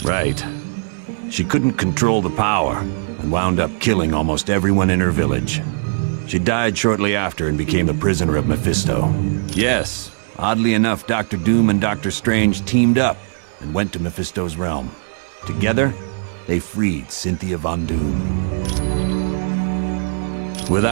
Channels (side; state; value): left; silent; digital silence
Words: Right. She couldn't control the power, and wound up killing almost everyone in her village. She died shortly after and became a prisoner of Mephisto. Yes, oddly enough, Dr. Doom and Dr. Strange teamed up and went to Mephisto's realm. Together, they freed Cynthia Von Doom.